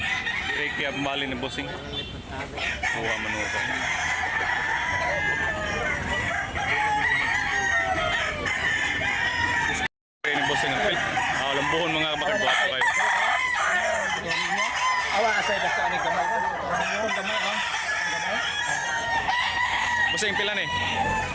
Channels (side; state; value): both; identical; correlation 1.00